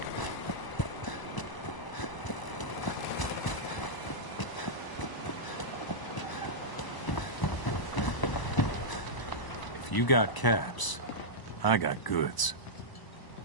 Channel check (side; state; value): right; late; 1.0 ms